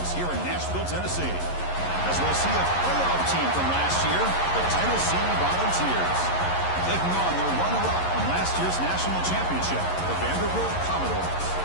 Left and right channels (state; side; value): late; right; 11 ms